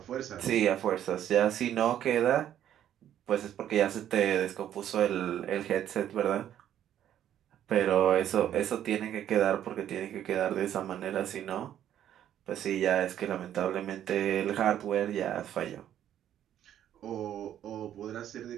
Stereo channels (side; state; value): left; quieter; 10.9 dB